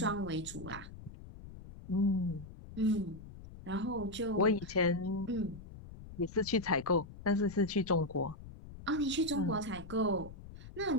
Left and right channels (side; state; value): left; noise; rumble, 15 dB below the sound